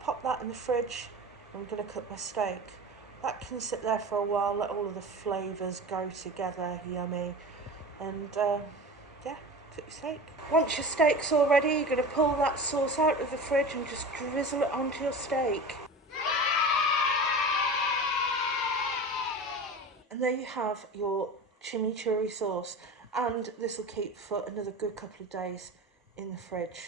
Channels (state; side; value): normal; both; correlation 0.32